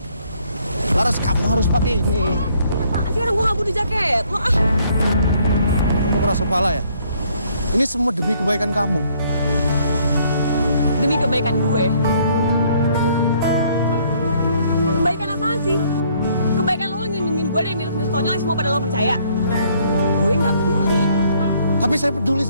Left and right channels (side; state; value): both; inverted; correlation -0.65